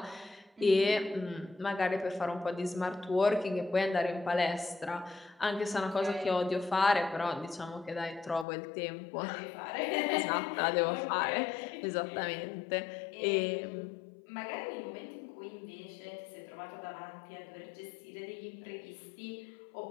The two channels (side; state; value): right; drops out; at 8.5 s